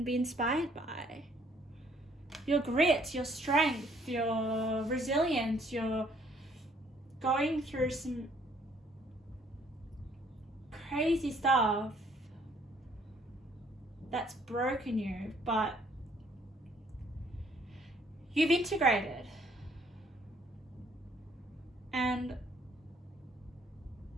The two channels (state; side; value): normal; both; correlation 0.64